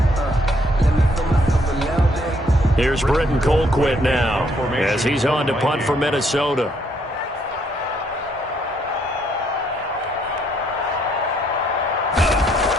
Here's Britton Colquitt now as he's on to punt for Minnesota.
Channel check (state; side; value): normal; both; correlation 0.70